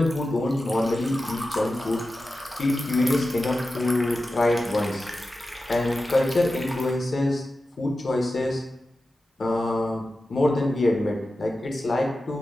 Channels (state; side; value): normal; both; correlation 0.93